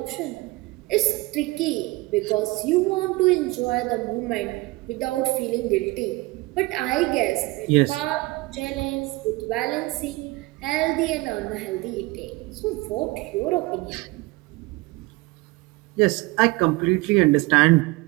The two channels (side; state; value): left; quieter; 22.0 dB